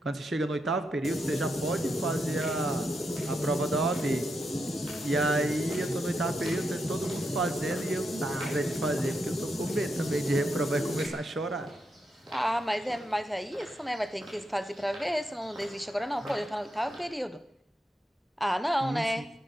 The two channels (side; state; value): both; normal; correlation 0.84